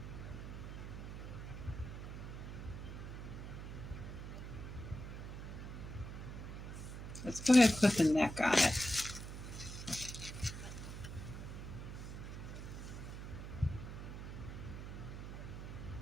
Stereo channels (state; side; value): noise; right; hum, 8 dB below the sound